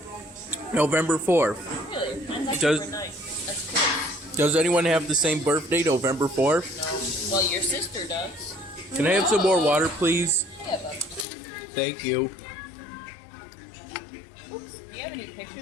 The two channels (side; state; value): right; drops out; at 11.2 s